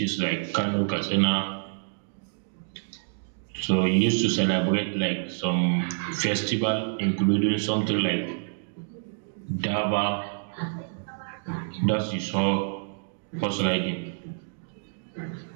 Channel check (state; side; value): silent; left; digital silence